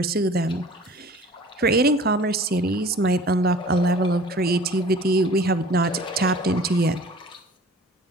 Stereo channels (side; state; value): both; normal; correlation 0.47